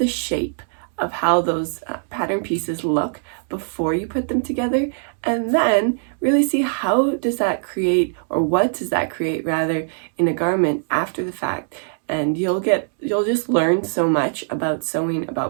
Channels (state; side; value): silent; left; digital silence